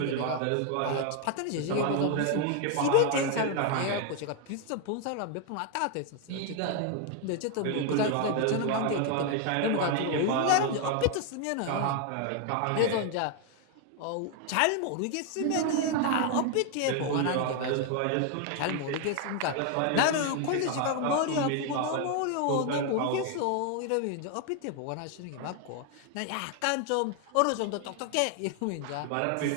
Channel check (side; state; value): both; different; correlation 0.01